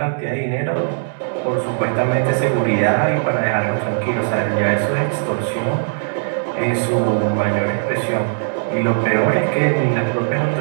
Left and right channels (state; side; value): silent; left; 67 dB below the other